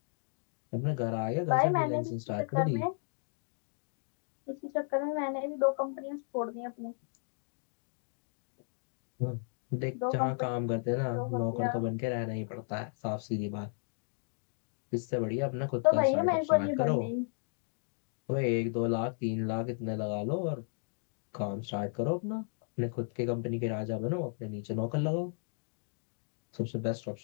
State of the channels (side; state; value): right; silent; 55 dB below the other